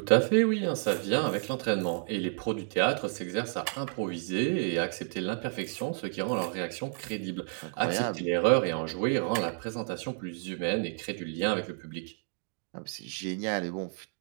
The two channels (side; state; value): left; silent; 57 dB below the other